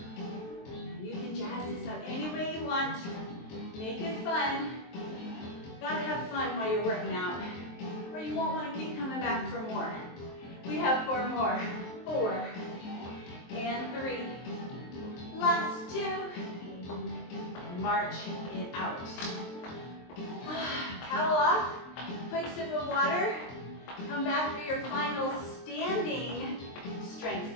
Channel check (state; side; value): late; right; 23 ms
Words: You can jazz this up any way you want. Make it fun. Gotta have fun while you're working out, or you won't want to keep coming back for more. We have 4 more. 4 and 3. Last 2. March it out. Towel off. Quick sip of water. Come back for your final standing strength